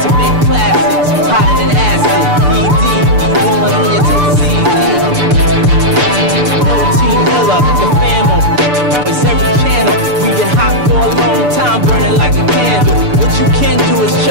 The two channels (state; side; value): late; left; 6.8 ms